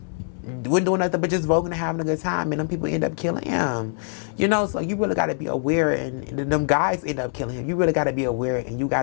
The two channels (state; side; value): silent; right; digital silence